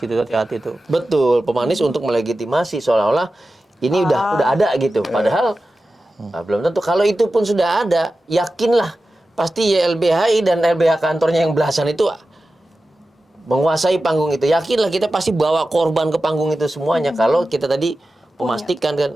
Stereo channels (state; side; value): normal; both; correlation 0.94